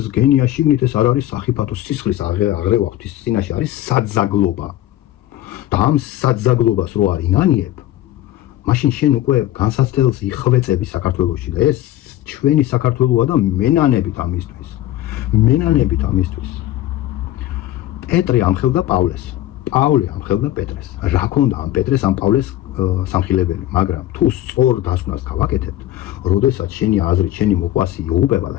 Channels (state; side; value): quieter; right; 14.0 dB